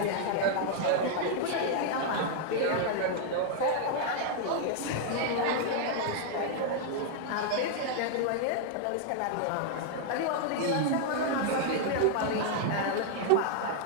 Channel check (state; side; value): different; both; correlation 0.00